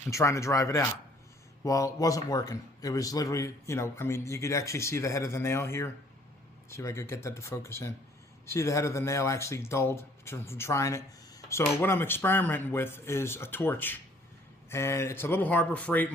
and trying to drive it out. Well, it wasn't working. It was literally, you could actually see the head of the nail here. See if I could get that to focus in. See the head of the nail actually dulled from trying it. So what I'm experimenting with is a torch. And it's a little Harbor Freight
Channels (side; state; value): both; normal; correlation 0.59